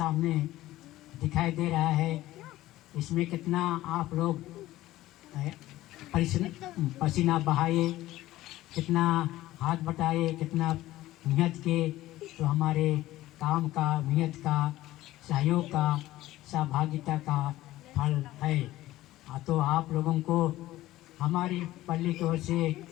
दिखाई दे रहा है। इसमें कितना आप लोग पसीना बहाए, कितना हाथ बटाए, कितना मेहनत के, तो हमारे काम का, मेहनत का, सहयोग का, सहभागिता का फल है। तो आप लोगों को हमारी पल्ली की ओर से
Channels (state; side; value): quieter; right; 15.9 dB